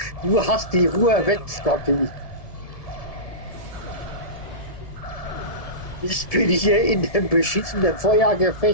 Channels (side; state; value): right; late; 1.7 ms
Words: Ruhe weg, Scotty. Ich bin hier in dem beschissenen